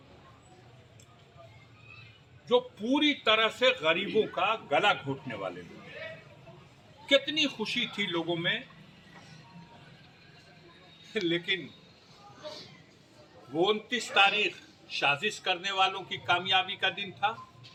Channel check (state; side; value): identical; both; correlation 1.00